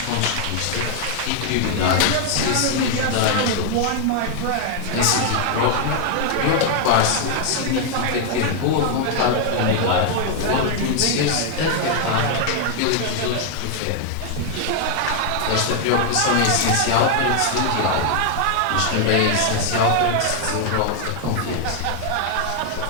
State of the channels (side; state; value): both; different; correlation 0.00